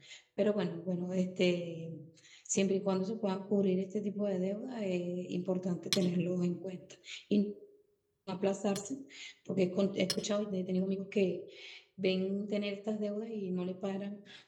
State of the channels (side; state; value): both; identical; correlation 1.00